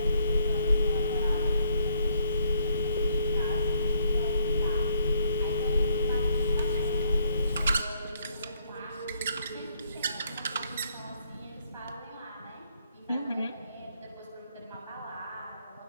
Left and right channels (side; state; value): both; inverted; correlation -0.69